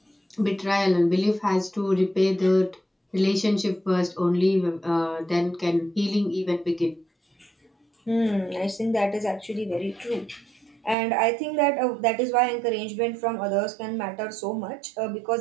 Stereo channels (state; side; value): drops out; left; at 11.0 s